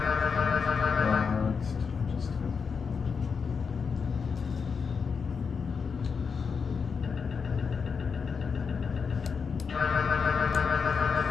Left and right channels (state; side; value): quieter; right; 5.7 dB